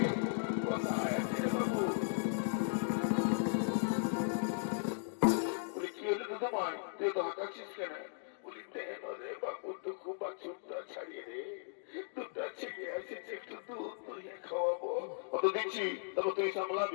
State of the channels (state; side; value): silent; right; digital silence